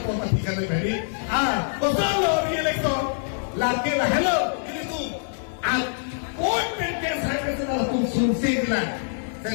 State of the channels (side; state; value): right; silent; digital silence